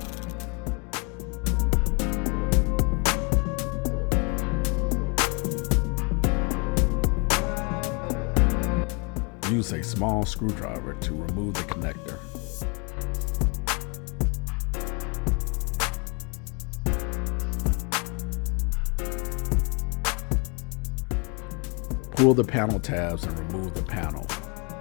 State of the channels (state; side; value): quieter; right; 33.4 dB